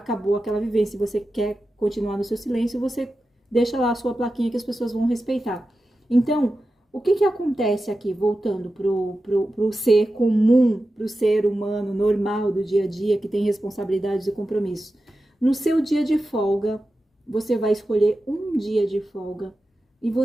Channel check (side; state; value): both; normal; correlation 0.92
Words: aquela vivência, você quer continuar no seu silêncio, você deixa lá a sua plaquinha que as pessoas vão respeitar. Então, o que acontece aqui, voltando pro ser comum, pro ser humano normal do dia a dia, que tem responsabilidades e compromissos? No seu dia de folga, você vai escolher um dia de folga e